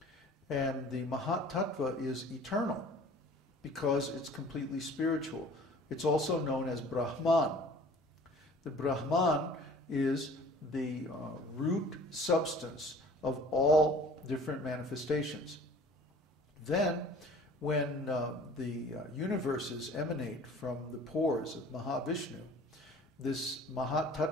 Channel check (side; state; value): both; normal; correlation 0.48